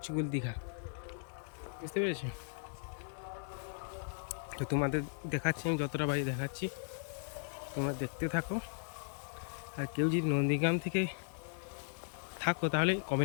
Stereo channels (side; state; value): right; silent; digital silence